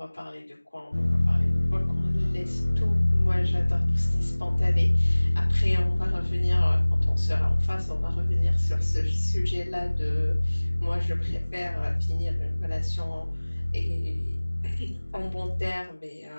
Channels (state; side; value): inverted; both; correlation -1.00